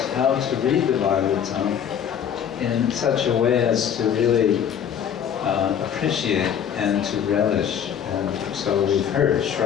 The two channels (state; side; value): quieter; right; 8.6 dB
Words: how to read the Bhagavatam in such a way as to really appreciate and to relish. And so we've heard